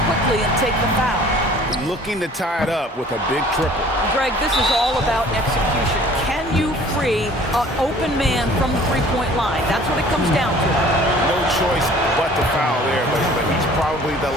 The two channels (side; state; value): both; normal; correlation 0.51